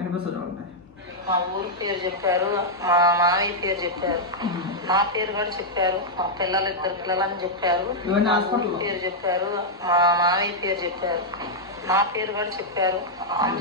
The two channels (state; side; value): normal; both; correlation -0.05